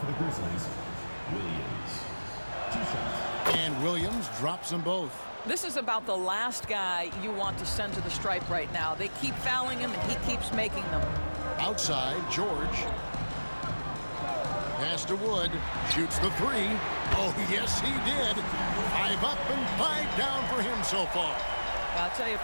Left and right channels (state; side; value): inverted; both; correlation -1.00